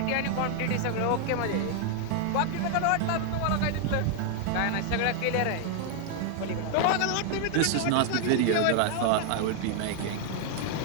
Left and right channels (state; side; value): different; both; correlation 0.00